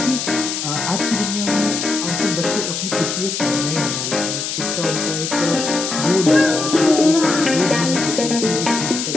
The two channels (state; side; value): noise; left; hiss, 3 dB below the sound